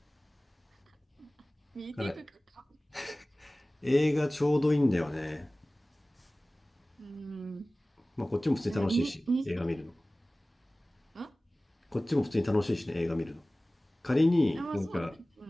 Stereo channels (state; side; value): normal; both; correlation 0.98